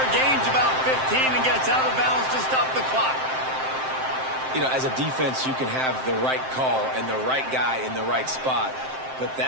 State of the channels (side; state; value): left; late; 7.7 ms